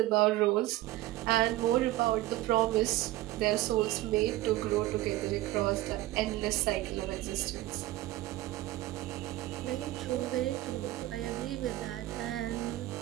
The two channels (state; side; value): quieter; left; 16.5 dB